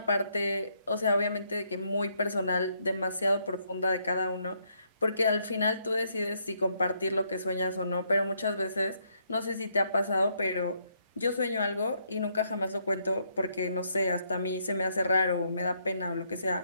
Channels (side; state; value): both; inverted; correlation -0.73